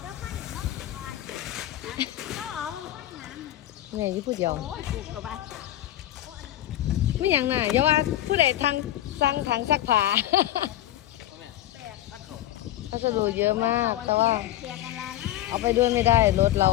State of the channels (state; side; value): quieter; right; 13.9 dB